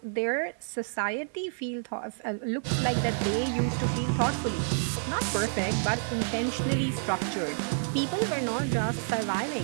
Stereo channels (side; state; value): left; silent; digital silence